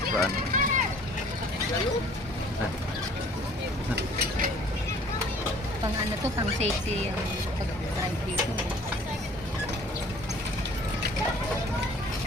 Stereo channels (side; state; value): both; normal; correlation 0.52